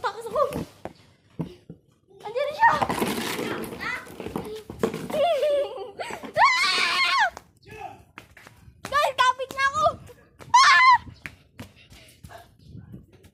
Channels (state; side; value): identical; both; correlation 1.00